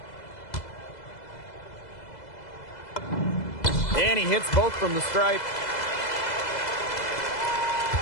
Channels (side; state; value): right; late; 2.0 ms